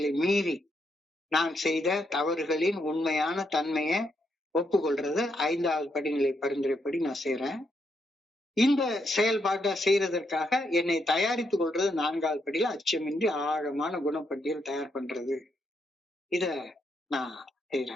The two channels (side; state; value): both; normal; correlation 0.78